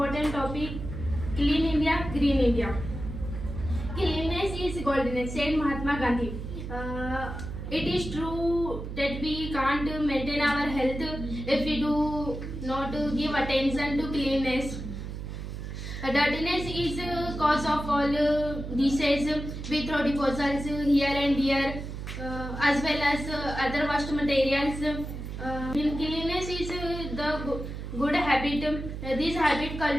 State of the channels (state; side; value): noise; right; hum, 7 dB below the sound